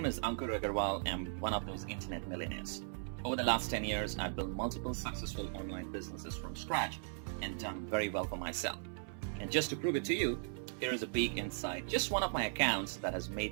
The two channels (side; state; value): left; silent; 52 dB below the other